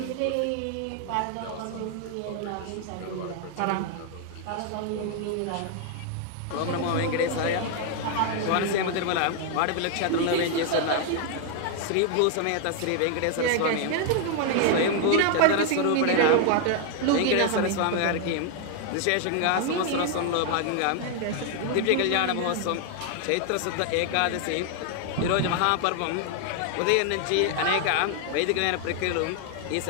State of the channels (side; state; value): both; different; correlation 0.00